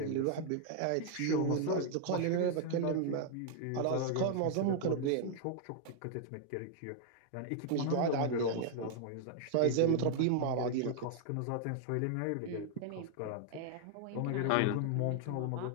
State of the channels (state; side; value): different; both; correlation 0.00